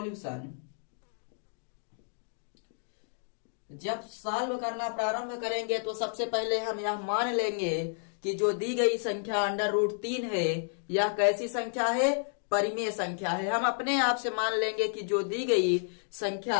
जब सॉल्व करना प्रारंभ करेंगे तो सबसे पहले हम यह मान लेंगे कि जो दी गई संख्या √3 है यह कैसी संख्या है? परिमेय संख्या है। हम अपने आप से मान लेंगे कि जो दी गई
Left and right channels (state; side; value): silent; right; digital silence